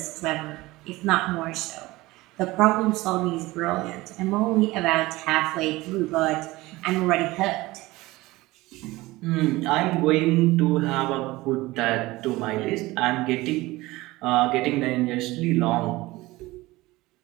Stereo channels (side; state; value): left; quieter; 19.8 dB